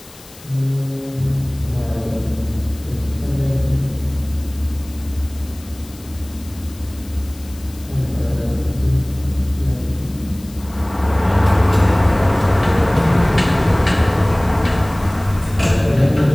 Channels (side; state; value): left; noise; hiss, 22 dB below the sound